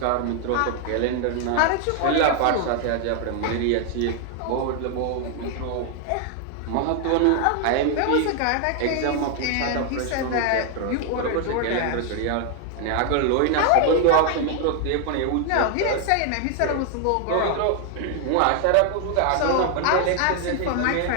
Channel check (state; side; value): different; both; correlation 0.00